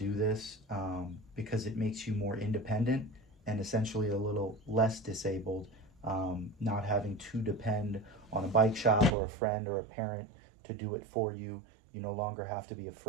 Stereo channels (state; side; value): drops out; left; at 9.1 s